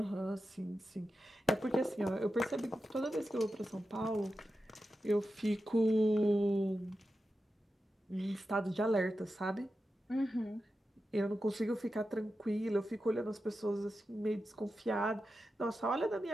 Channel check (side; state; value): both; normal; correlation 0.91